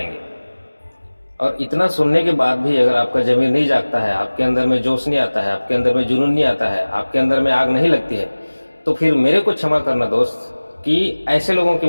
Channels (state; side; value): inverted; both; correlation -1.00